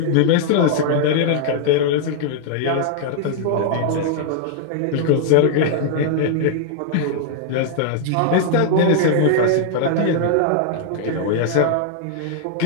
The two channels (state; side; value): different; both; correlation -0.01